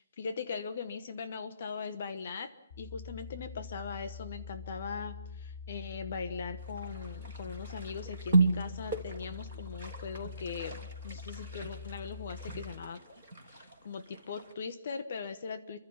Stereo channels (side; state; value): both; inverted; correlation -0.67